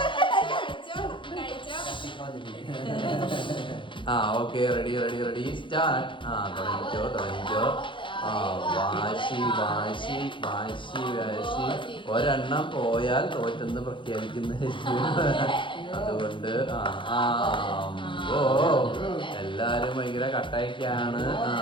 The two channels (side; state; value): right; late; 0.24 ms